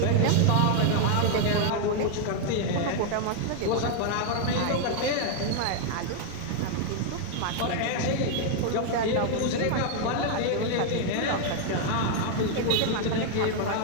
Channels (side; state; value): both; different; correlation 0.00